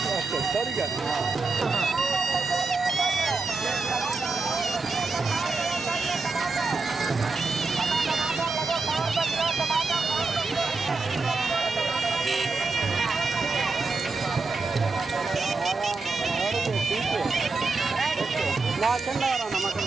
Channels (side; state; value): left; quieter; 4.0 dB